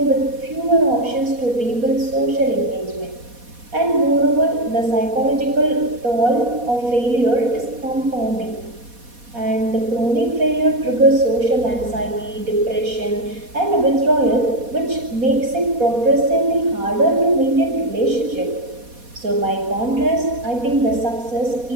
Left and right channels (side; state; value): left; late; 4.2 ms